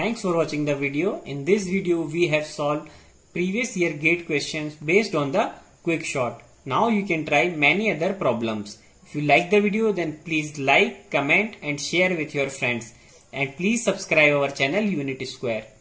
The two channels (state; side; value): identical; both; correlation 1.00